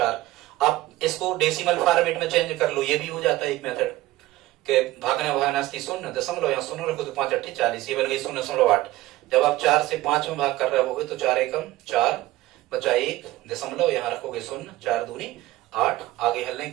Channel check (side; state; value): left; quieter; 17.1 dB